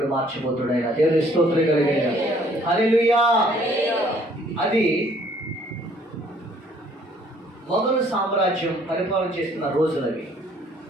మార్చిపోతాడు. ఆయన దేవుడి స్తోత్రం కలిగిన హల్లెలూయా. అది మొఘలు సామ్రాజ్యం పరిపాలన చేస్తున్న రోజులవి.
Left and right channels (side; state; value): both; normal; correlation 0.61